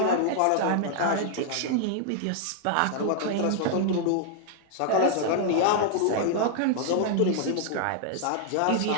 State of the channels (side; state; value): both; different; correlation -0.01